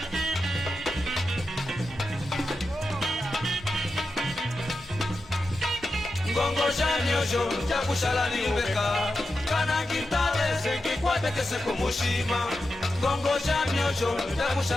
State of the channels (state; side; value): normal; both; correlation 0.90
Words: Bongo jamyosho jakushala niyubeka kana ngitale sengikwate kese kumushima. Bongo jamyosho